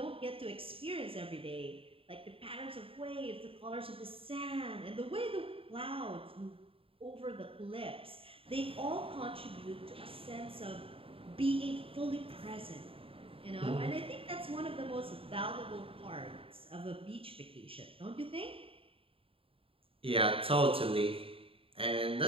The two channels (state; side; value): late; left; 0.27 ms